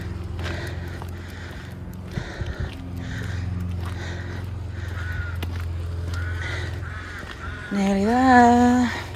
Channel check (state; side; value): identical; both; correlation 1.00